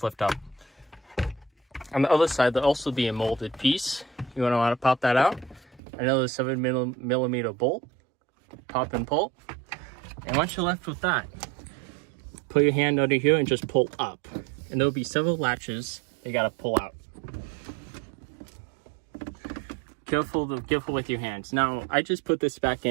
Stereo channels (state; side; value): drops out; left; at 5.8 s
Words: lift up. On the other side, there'll also be a molded piece. You're going to want to pop that out. Another 7mm bolt. Pop and pull. And once you're left with that, put your hand under here and just pull up. And there'll be several latches you got to pull out. Careful with your hands. Now, I just put this back